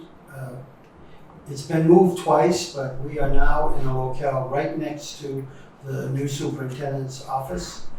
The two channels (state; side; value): identical; both; correlation 1.00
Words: It's been moved twice, but we are now in a locale right next to the new superintendent's office.